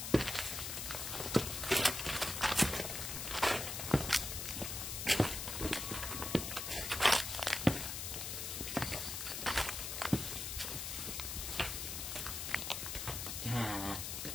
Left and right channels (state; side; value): noise; left; hiss, 4 dB below the sound